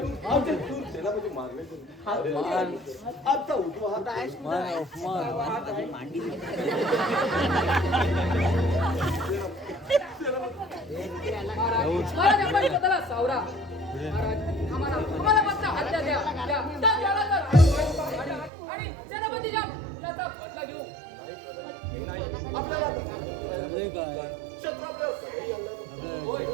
आमचे दूर सेनापती मारले आमचा उठवा हात आहे महाराज आपण स्वतःला सावरा. महाराज आम्हाला मात्र हत्या द्या आणि सेनापतीच्या त्याचा बदला घेऊ. क्षत्रपला सगळी आणलं. होय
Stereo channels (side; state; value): left; drops out; at 18.5 s